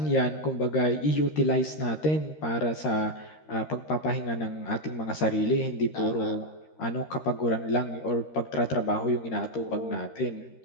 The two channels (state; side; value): late; right; 13 ms